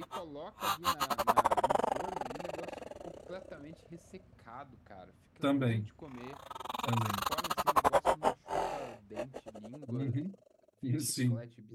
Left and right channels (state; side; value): identical; both; correlation 1.00